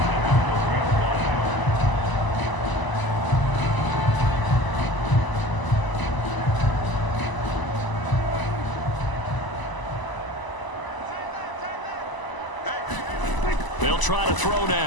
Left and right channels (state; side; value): late; right; 1.0 ms